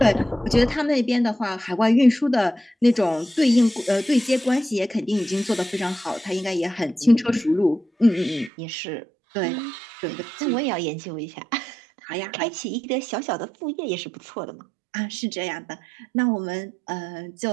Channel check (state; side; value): drops out; left; at 8.5 s